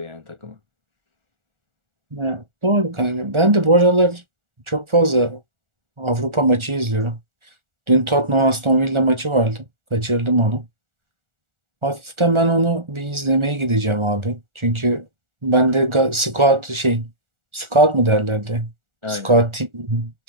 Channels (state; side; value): late; left; 1.4 ms